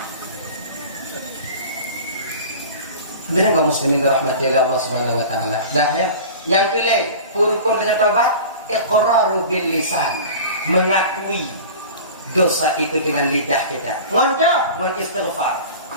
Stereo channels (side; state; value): both; inverted; correlation -0.37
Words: Benar kaum muslimin dirahmati Allah Subhanahu wa taala. Dah ya. Yang kelima, rukun dengan taubat, iqraru bil lisan, mengakui dosa itu dengan lidah kita. Ngondok, mengistighfar.